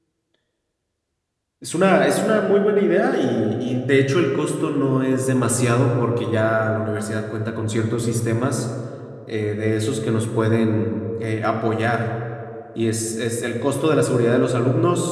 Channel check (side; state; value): both; identical; correlation 1.00